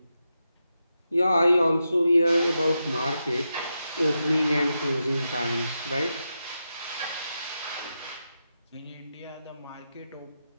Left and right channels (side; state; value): both; inverted; correlation -0.88